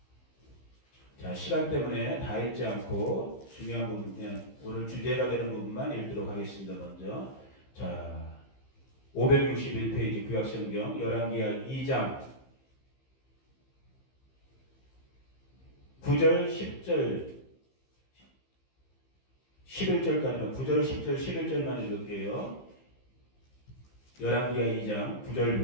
자, 시간 때문에 다 읽지 않고 중요한 부분, 그냥 오늘 주제가 되는 부분만 읽도록 하겠습니다. 먼저, 자, 561페이지 구약성경 열왕기하 2장 9절, 10절, 11절까지만 9절, 10절, 11절만 읽을게요. 열왕기하 2장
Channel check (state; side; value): late; right; 15 ms